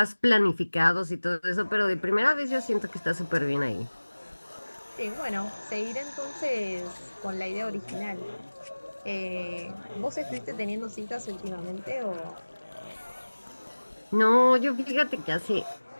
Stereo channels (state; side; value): inverted; both; correlation -1.00